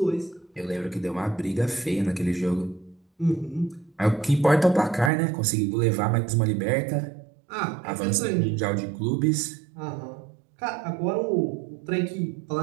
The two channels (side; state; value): left; drops out; at 5.1 s